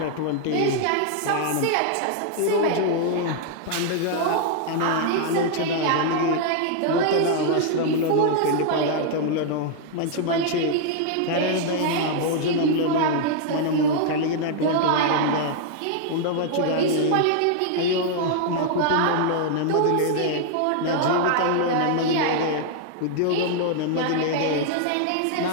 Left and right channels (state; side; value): different; both; correlation -0.01